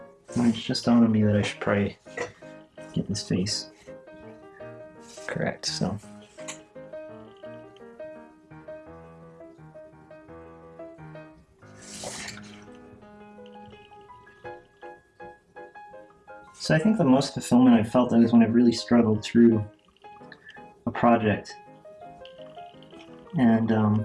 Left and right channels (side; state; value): both; identical; correlation 1.00